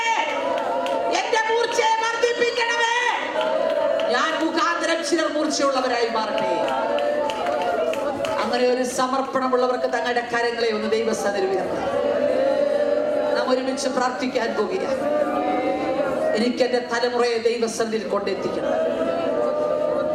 എന്റെ മൂർച്ചയെ വർദ്ധിപ്പിക്കണമേ. ഞാൻ മുഖാന്തരം ചിലർ മൂർച്ചയുള്ളവരായി മാറട്ടെ. അങ്ങനെ ഒരു സമർപ്പണമുള്ളവർക്ക് തങ്ങളുടെ കരങ്ങളെ ഒന്ന് ദൈവസന്നിധിയിൽ ഉയർത്താം. നാം ഒരുമിച്ച് പ്രാർത്ഥിക്കാൻ പോകുകയാണ്. എനിക്ക് എന്റെ തലമുറയെ ദൈവസന്നിധിയിൽ കൊണ്ടെത്തിക്കണം.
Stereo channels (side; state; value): both; identical; correlation 1.00